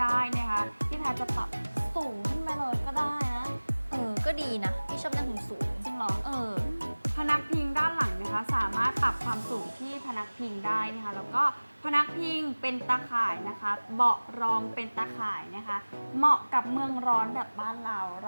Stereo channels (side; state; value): both; inverted; correlation -1.00